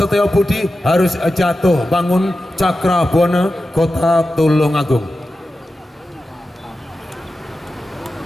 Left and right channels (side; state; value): both; normal; correlation 0.92